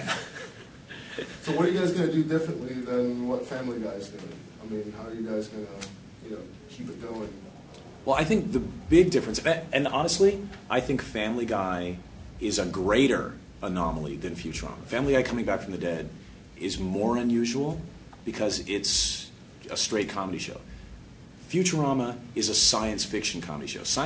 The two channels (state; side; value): identical; both; correlation 1.00